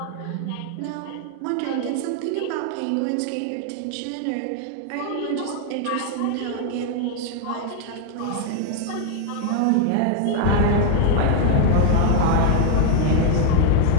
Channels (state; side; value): different; both; correlation 0.00